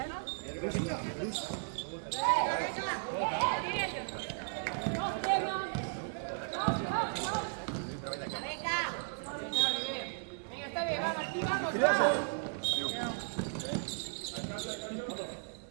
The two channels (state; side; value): silent; left; 54 dB below the other